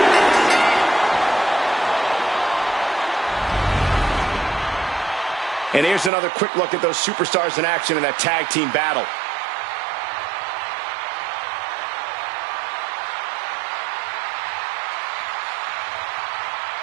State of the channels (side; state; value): left; drops out; at 6.1 s